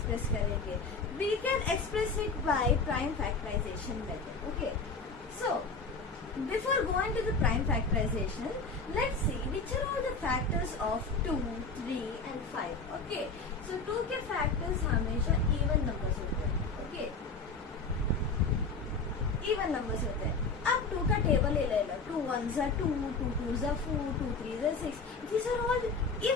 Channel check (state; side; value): quieter; right; 4.0 dB